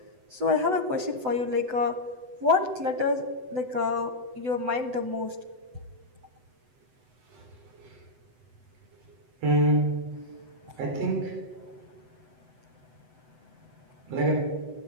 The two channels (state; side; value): late; left; 7.9 ms